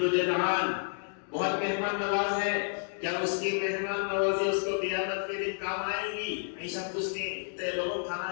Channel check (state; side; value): silent; right; digital silence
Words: جدعان، بہت مہمان نواز ہے، کیا اس کی مہمان نوازی اس کو قیامت کے دن کام آئے گی؟ عائشہ پوچھتی اتنے لوگوں